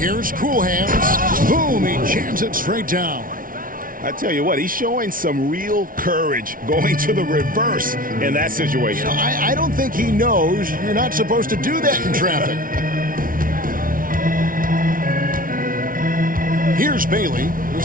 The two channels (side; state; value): left; late; 0.40 ms